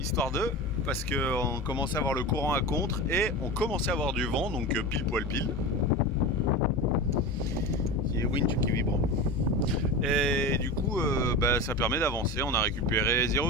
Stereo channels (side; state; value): both; normal; correlation 0.26